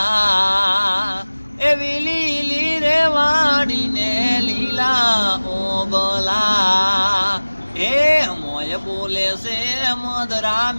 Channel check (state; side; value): inverted; both; correlation -1.00